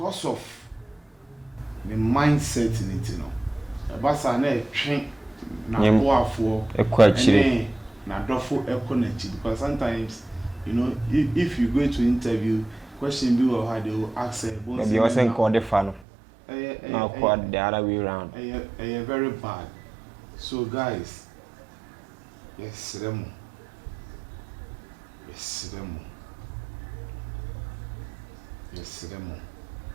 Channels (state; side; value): drops out; left; at 16.0 s